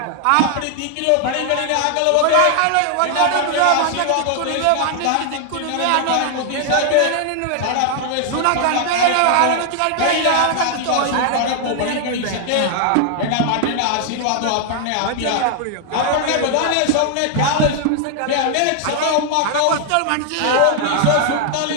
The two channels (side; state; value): both; different; correlation 0.00